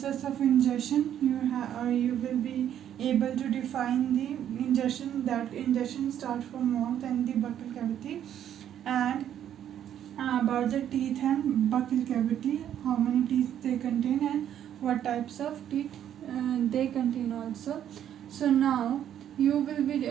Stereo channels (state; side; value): quieter; left; 10.3 dB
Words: of ingestion. You will be able to define the ingestion, that ingestion starts from mouth and the buccal cavity, and about the teeth and buccal cavity, how many teeth they contain and what types of teeth they contain also. So now you will be